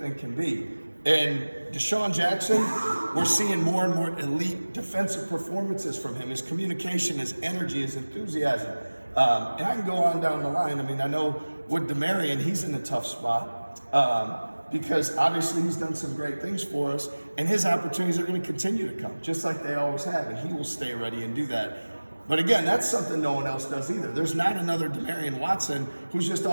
can be. And Deshaun Jackson, we're seeing more and more elite defensive performances from him. His communication, his energy, his enthusiasm. And I can go on down the line. I mean, I know with DeMarion, he's in a tough spot because obviously he's done some great things for us, and his opportunities are going to continue to come, just like they always have, and he will stay ready and do that. But again, that's something no one else does either. There's not another DeMarion Watson who's just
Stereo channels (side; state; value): both; inverted; correlation -1.00